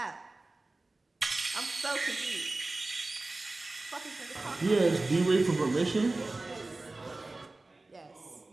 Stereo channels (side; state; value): left; quieter; 3.1 dB